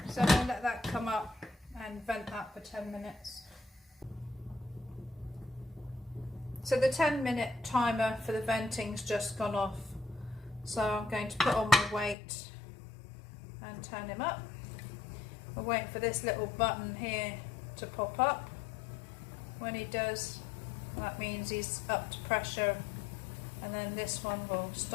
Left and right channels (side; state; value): right; drops out; at 12.2 s